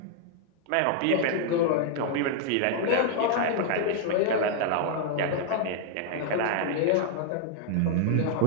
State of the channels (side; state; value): both; different; correlation 0.00